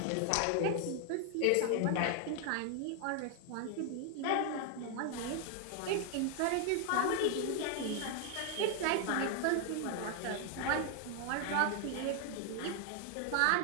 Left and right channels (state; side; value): different; both; correlation 0.00